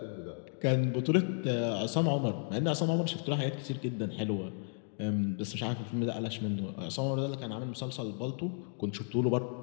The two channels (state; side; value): silent; right; digital silence